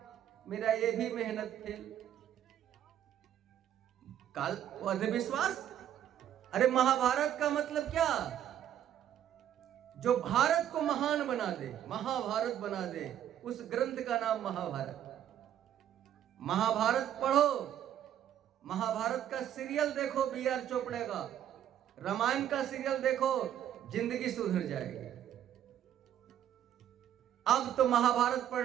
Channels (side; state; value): left; quieter; 10.6 dB